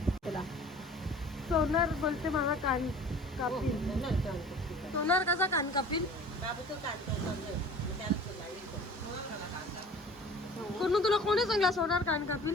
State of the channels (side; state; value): both; normal; correlation 0.45